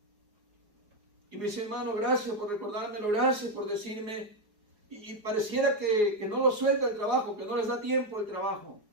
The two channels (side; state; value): left; late; 4.8 ms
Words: Y me dice, hermano, gracias por recordármelo, gracias por decirme. Y pareciera que no lo suelta el trabajo, que no les da tiempo el trabajo.